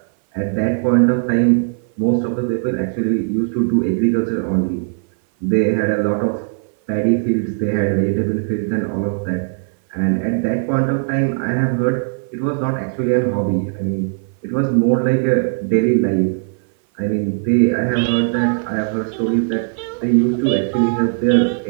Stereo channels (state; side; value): silent; left; 58 dB below the other